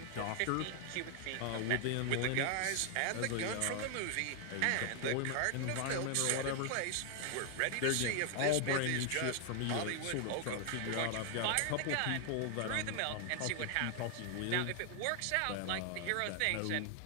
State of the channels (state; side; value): different; both; correlation 0.00